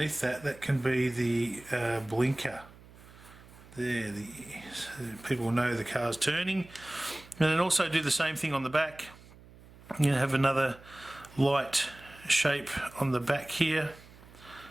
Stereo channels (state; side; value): noise; right; hum, 22 dB below the sound